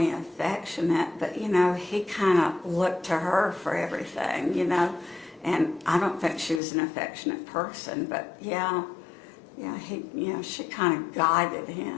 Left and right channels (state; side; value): drops out; right; at 6.6 s